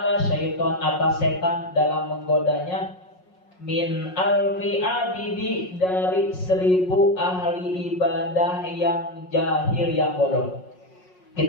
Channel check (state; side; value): late; right; 5.5 ms